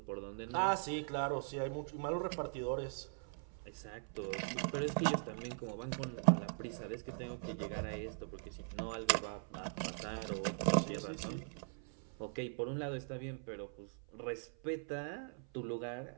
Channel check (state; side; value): silent; left; 50 dB below the other